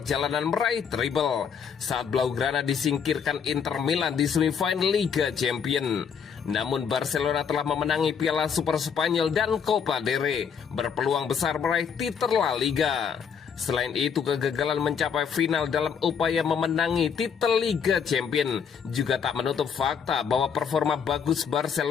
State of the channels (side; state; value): right; quieter; 7.0 dB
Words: meraih treble saat Blaugrana disingkirkan Inter Milan di semifinal Liga Champions. Namun Barcelona telah memenangi Piala Super Spanyol dan Copa del Rey, berpeluang besar meraih titel La Liga. Selain itu, kegagalan mencapai final dalam upaya memenangi titel Liga Champions juga tak menutup fakta bahwa performa bagus